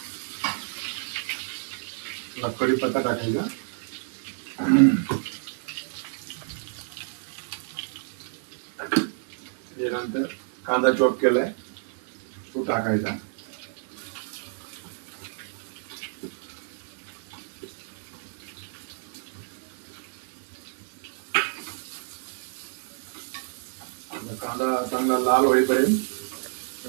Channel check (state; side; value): silent; left; digital silence